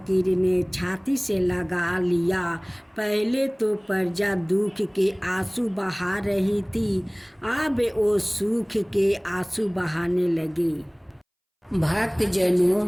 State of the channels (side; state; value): both; identical; correlation 1.00